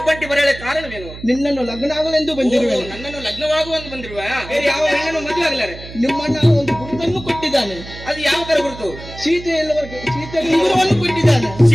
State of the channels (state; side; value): noise; right; hum, 14 dB below the sound